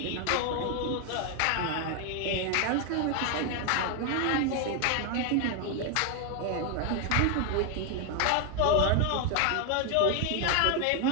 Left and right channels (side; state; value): both; different; correlation 0.01